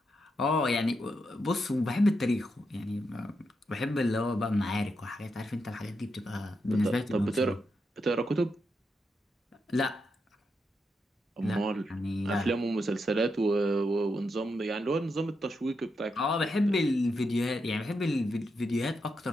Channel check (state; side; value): normal; both; correlation 0.84